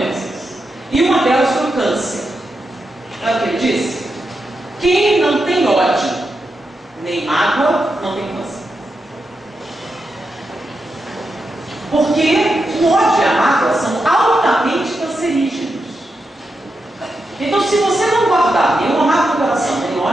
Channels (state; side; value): normal; both; correlation 0.87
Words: E uma delas foi o câncer. Olha o que ele disse? Quem não tem ódio, nem mágoa, não tem câncer. Porque o ódio e a mágoa são altamente cancerígenos. Então, se você não guardar nenhuma mágoa no coração, nem